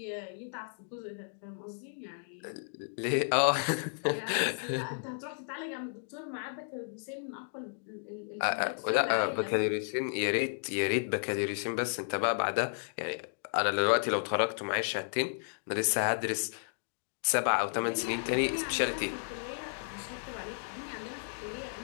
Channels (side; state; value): right; silent; digital silence